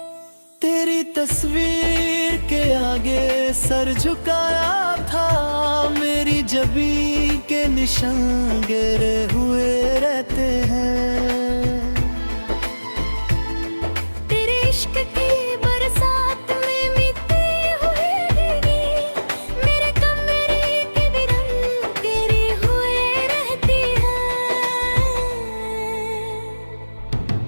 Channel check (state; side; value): inverted; both; correlation -1.00